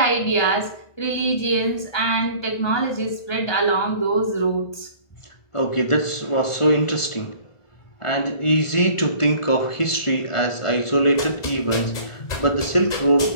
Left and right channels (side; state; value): right; late; 1.4 ms